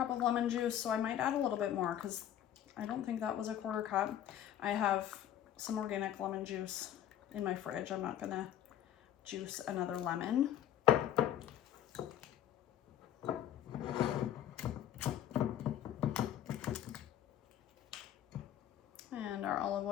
of lemon juice, so I might add a little bit more because I don't think that was a 1/4 cup. I have some organic lemon juice in my fridge. I'm not gonna juice another lemon. And our olive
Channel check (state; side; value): quieter; right; 11.0 dB